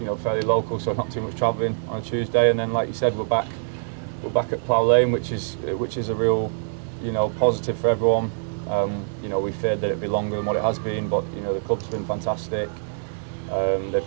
know, fairly local, so not too much travelling on a Tuesday, and then like you said, we're back at Plough Lane, which is a real, you know, positive for everyone. You know, we feared that it'd be longer than what it has been, but you know, the club's been fantastic. They've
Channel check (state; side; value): silent; left; digital silence